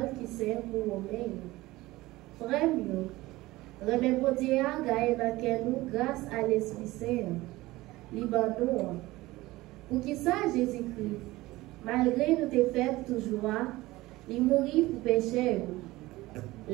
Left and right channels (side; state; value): left; quieter; 18.9 dB